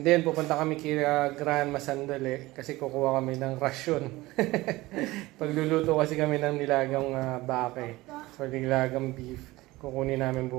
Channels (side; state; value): left; quieter; 19.5 dB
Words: then, pupunta kami kila Grand Masandali kasi kukuha kami ng rasyon. Pagluluto kasi kami ng nilagang bake. So, nilagang beef. Kukunin namin